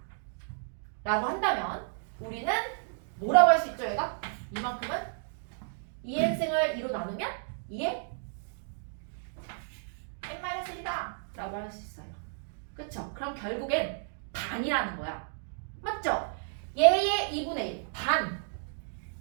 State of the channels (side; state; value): left; silent; digital silence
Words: 라고 한다면 우리는 뭐라고 할 수 있죠 얘가? 이만큼은 2n승을 2로 나누면 2의 n-1이다 라고 할 수 있어요. 그쵸? 그럼 결국엔 반이라는 거야. 맞죠? 얘의 2분의 1 반,